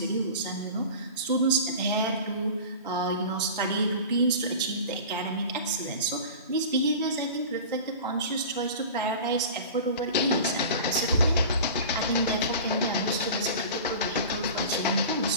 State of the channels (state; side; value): inverted; both; correlation -0.36